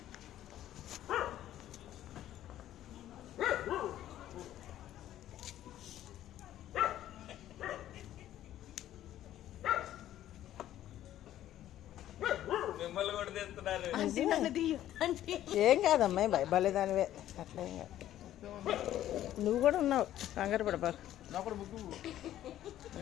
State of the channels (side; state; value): right; quieter; 12.6 dB